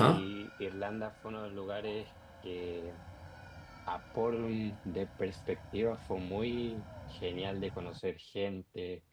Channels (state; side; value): identical; both; correlation 1.00